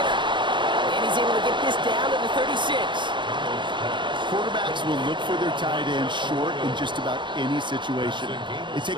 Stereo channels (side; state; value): left; late; 0.23 ms